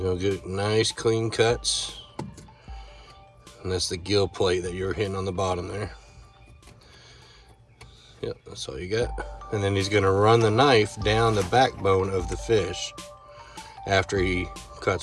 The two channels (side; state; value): both; identical; correlation 1.00